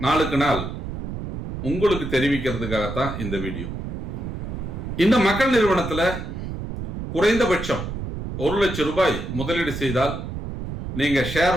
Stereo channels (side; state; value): right; noise; rumble, 6 dB below the sound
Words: நாளுக்கு நாள் உங்களுக்கு தெரிவிக்கிறதுக்காகத்தான் இந்த வீடியோ. இந்த மக்கள் நிறுவனத்தில் குறைந்தபட்சம் 1 லட்சம் ரூபாய் முதலீடு செய்தால் நீங்க